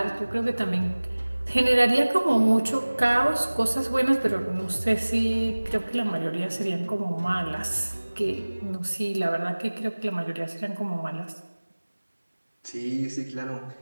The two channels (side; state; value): both; inverted; correlation -1.00